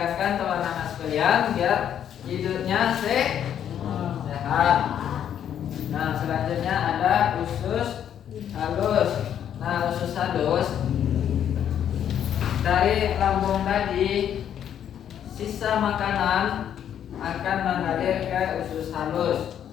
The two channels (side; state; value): right; quieter; 9.6 dB